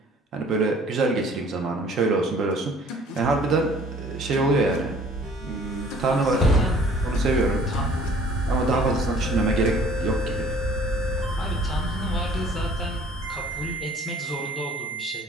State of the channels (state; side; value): normal; both; correlation 0.53